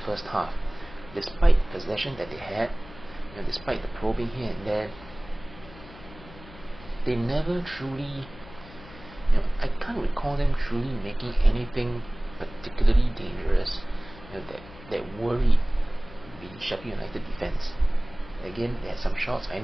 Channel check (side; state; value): left; noise; hum, 19 dB below the sound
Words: first half, despite the possession that they had, despite the probing here and there, they never truly, I can't recall them truly making anything particularly dangerous, that worried the Sheffield United defense. Again, they had some shots. I